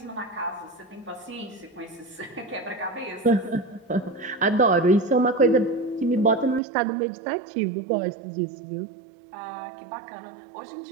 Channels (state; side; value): drops out; left; at 6.6 s